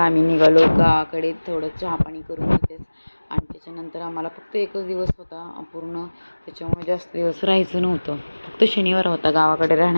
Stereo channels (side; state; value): both; inverted; correlation -1.00